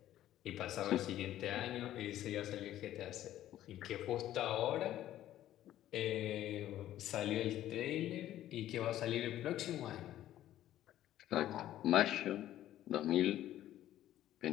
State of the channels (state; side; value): quieter; right; 13.0 dB